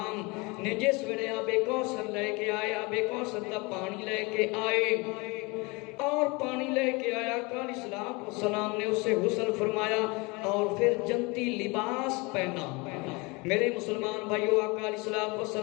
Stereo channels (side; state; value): right; quieter; 26.7 dB